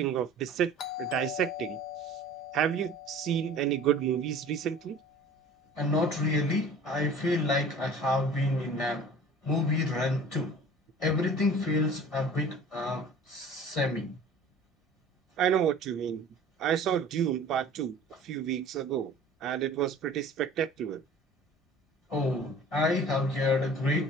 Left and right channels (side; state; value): both; normal; correlation 0.44